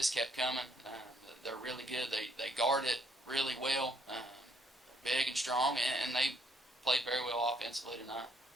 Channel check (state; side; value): normal; both; correlation 0.70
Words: kept coming. They're really good. They guard it really well, big and strong, and they played very well offensively tonight.